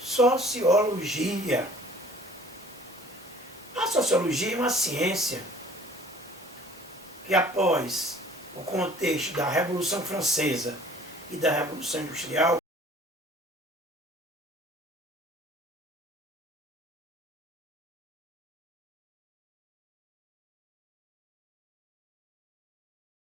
A sociologia é uma ciência que, após o contexto da Revolução Francesa e da Revolução Industrial,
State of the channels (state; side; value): normal; both; correlation 0.51